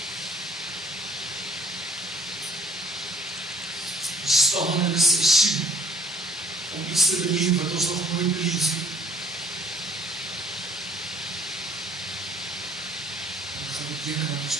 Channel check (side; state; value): both; normal; correlation 0.59